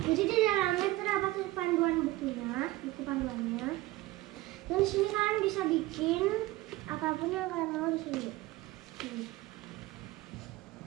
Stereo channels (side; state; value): left; quieter; 17.9 dB